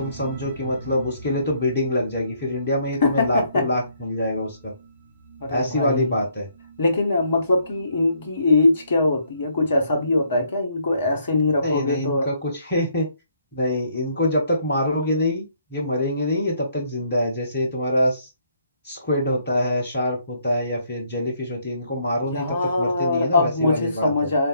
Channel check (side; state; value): both; inverted; correlation -0.69